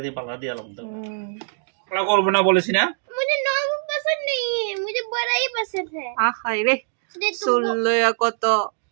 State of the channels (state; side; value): silent; left; digital silence